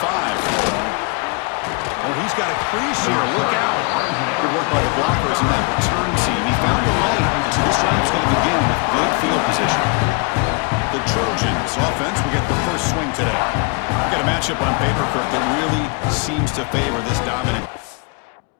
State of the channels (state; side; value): quieter; right; 32.6 dB